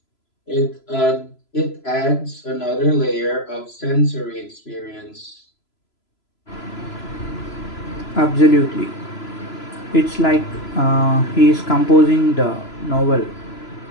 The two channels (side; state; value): right; late; 3.0 ms